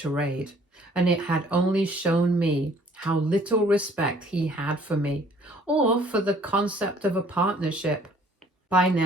and it had only shown me how little respect he had for me, or for the concept of a partnership. By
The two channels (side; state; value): both; normal; correlation 0.58